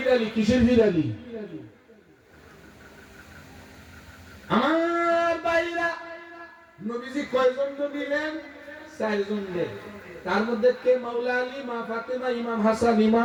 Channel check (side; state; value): both; identical; correlation 1.00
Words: কিসের ফিরালি? আমার ভাইরা, নবীজি কয়জন দিলেন? 4 জন দিলেন। তার মধ্যে কে? মাওলা আলী, মা ফাতেমা, ইমাম হাসান,